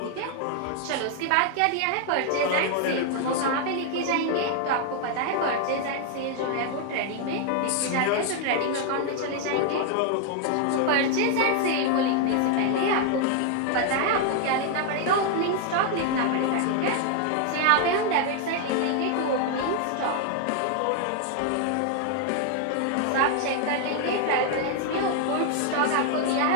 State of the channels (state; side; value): different; both; correlation 0.00